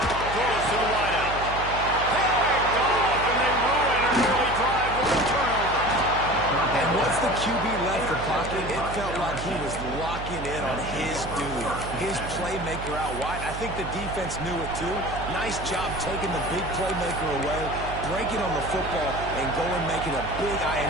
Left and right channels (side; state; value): right; noise; hum, 9 dB below the sound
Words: Throws to the wideout. Picked off, and they ruin an early drive with a turnover. And once the QB left the pocket, it felt like he was locking in on his dude, his playmaker out wide. I think the defense knew it too. Nice job taking the big playmaker away, breaking on the football, and going making a big